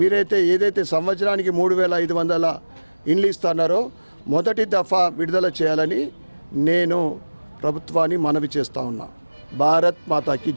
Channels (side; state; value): both; inverted; correlation -1.00